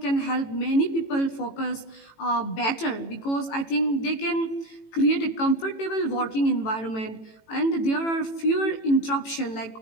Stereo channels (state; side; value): late; right; 18 ms